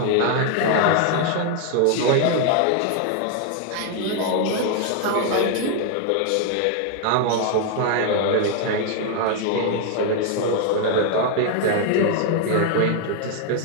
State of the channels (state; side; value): different; both; correlation 0.00